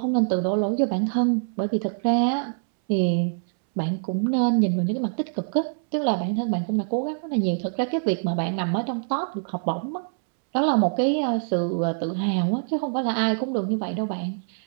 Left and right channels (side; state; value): left; silent; 62 dB below the other